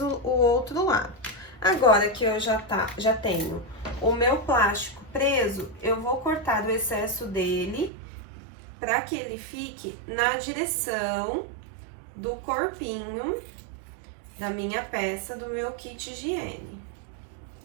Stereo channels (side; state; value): left; drops out; at 7.9 s